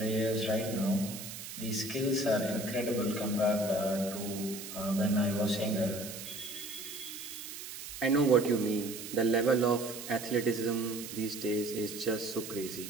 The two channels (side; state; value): right; noise; hiss, 10 dB below the sound